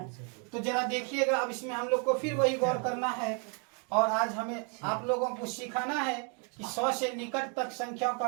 तो जरा देखिएगा, अब इसमें हम लोग को फिर वही गौर करना है, और आज हमें आप लोगों को सिखाना है कि 100 से निकट तक संख्याओं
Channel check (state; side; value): quieter; left; 38.5 dB